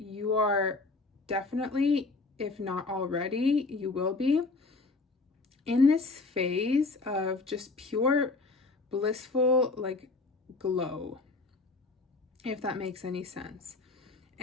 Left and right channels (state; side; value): quieter; right; 3.6 dB